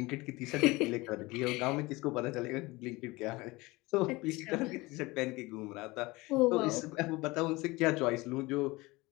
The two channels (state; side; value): quieter; right; 22.2 dB